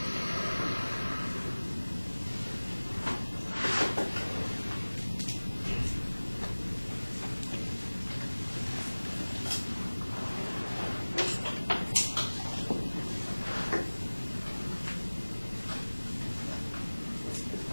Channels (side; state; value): both; inverted; correlation -1.00